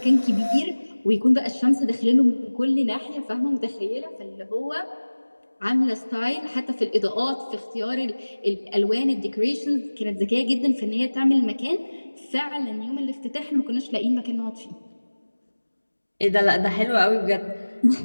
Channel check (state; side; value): inverted; both; correlation -1.00